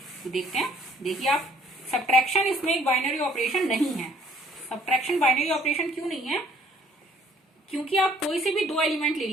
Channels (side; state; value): both; normal; correlation 0.59